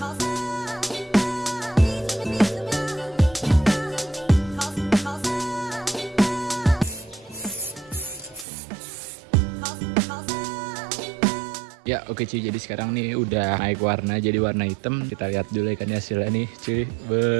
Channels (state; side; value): drops out; left; at 8.5 s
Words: Ya oke cuy, jadi sekarang nih udah naik warna jadi warna hitam. Kita lihat dulu ya kan hasilnya nih cuy.